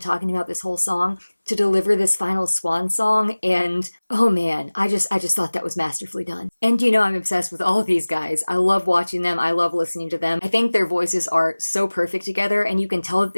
talking about this whole song to deliver this final swan song. And oh man, I just thought that was masterfully done. And I'm obsessed with all of these guys. I love watching them. I love listening to them. I think their voices are so perfect together, and you can tell that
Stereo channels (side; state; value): both; inverted; correlation -1.00